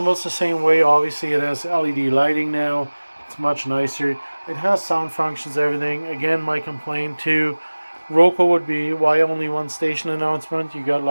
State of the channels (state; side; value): inverted; both; correlation -1.00